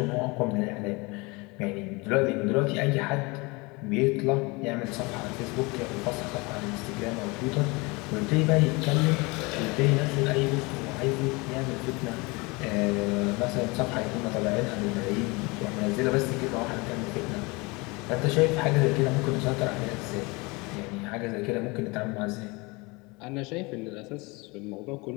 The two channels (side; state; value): right; quieter; 26.1 dB